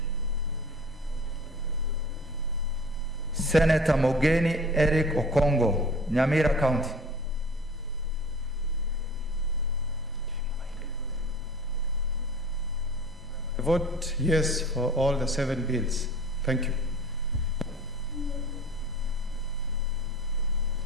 Senator Mogeni Eric Okongo, Nyamira County. I vote yes for all the 7 bills. Thank you.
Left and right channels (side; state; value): both; normal; correlation 0.43